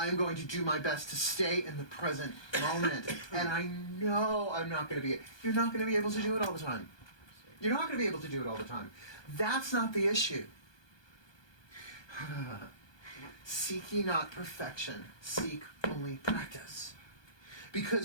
going to do my best to stay in the present moment. And I know I'm not going to be... You're not going to be able to do it all the time. You're not going to be able to do it all the time. That's not the issue. Seek ye not perfection. Seek only practice.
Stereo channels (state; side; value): late; right; 1.2 ms